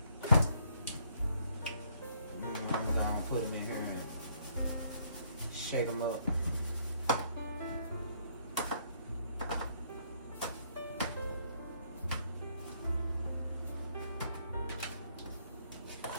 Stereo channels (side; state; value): both; inverted; correlation -0.68